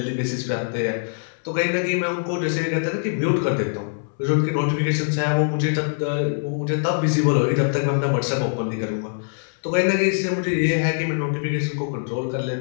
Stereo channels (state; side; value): silent; right; 63 dB below the other